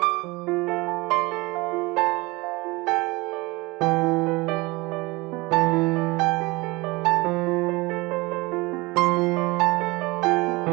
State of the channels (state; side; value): quieter; left; 23.2 dB